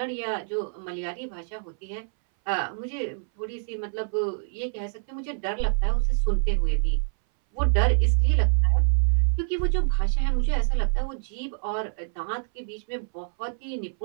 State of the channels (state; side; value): silent; left; 60 dB below the other